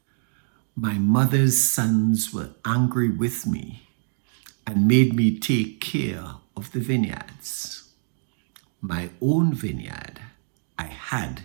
"My mother's sons were angry with me and made me take care of the vineyards. My own vineyard I had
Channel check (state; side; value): silent; left; digital silence